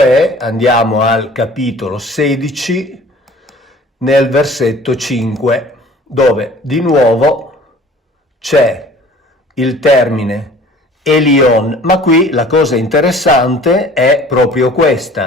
andiamo al capitolo 16 nel versetto 5 dove di nuovo c'è il termine Elion, ma qui la cosa interessante è proprio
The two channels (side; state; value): both; normal; correlation 0.49